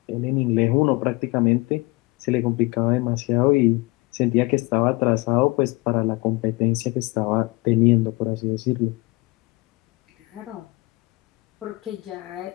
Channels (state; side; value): quieter; right; 23.8 dB